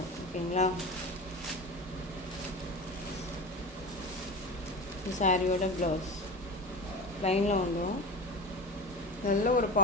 ஓகேங்களா, இது சாரியோட ப்ளவுஸ் லைனில் வந்துடும். நல்ல ஒரு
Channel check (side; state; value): both; normal; correlation 0.30